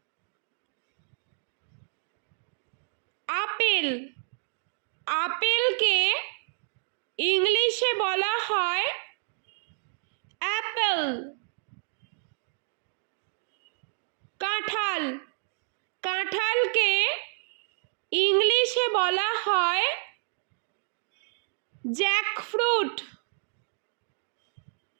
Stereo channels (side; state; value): left; silent; digital silence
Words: আপেল, আপেলকে ইংলিশে বলা হয় অ্যাপল। কাঁঠাল, কাঁঠালকে ইংলিশে বলা হয় জ্যাকফ্রুট।